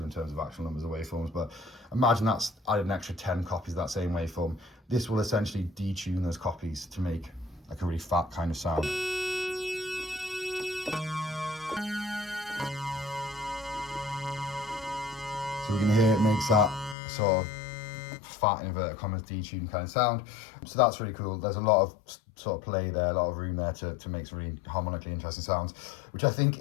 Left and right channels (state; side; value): drops out; right; at 16.9 s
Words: in terms of actual numbers of waveforms, but imagine that's added an extra 10 copies of that same waveform. This will essentially detune those copies to make like a really fat kind of sound. So we can hear it makes that sort of fat inverted commas detuned kind of sound. So that's really cool. There's a lot of sort of play there, a lot of room there to make some really harmonically interesting sounds, which I think